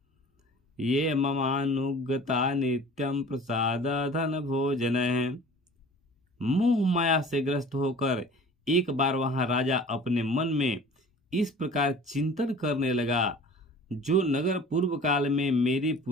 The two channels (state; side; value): normal; both; correlation 0.45